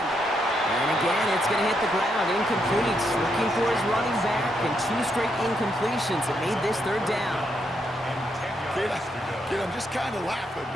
And again, it's going to hit the ground. Incomplete. Looking for his running back, and 2 straight incompletions that made this 3rd down. Kid, I'm just kind of laughing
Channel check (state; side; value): normal; both; correlation 0.78